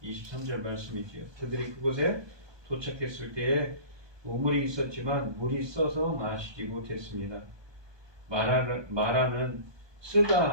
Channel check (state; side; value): late; left; 1.2 ms